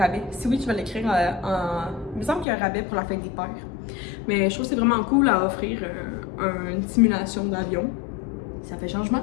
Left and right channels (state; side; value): drops out; right; at 2.5 s